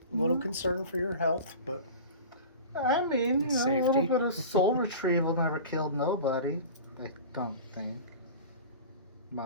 A little concern for your health, but I mean, a safety. little bit of soul retrieval never killed nobody. I don't think.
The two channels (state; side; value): inverted; both; correlation -0.36